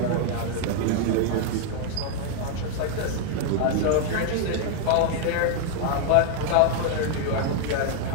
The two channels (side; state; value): both; different; correlation 0.00